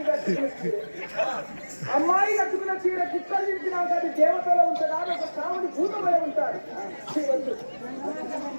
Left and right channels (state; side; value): inverted; both; correlation -1.00